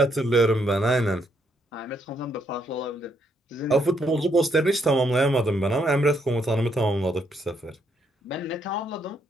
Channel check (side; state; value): both; normal; correlation 0.74